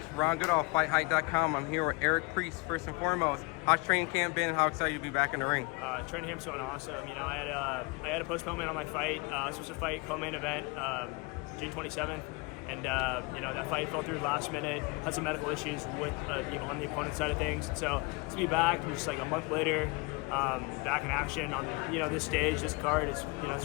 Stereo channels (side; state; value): right; quieter; 26.8 dB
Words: Ron Goodall, FightHype.com. I'm here with Eric Priest. First and foremost, how's training camp been? How excited you to be back in the ring? Training camp's going awesome. You know, I had a postponement on my fight. I was supposed to fight co-main event June 27th, and you know, that fight fell through last minute. Had some medical issues with on the opponent's side of things. And so to be back, just like a month later, back in action on this stage, this card is it's